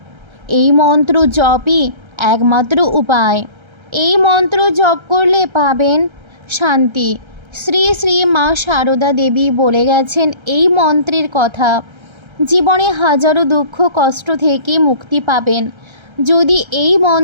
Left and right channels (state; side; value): late; left; 1.3 ms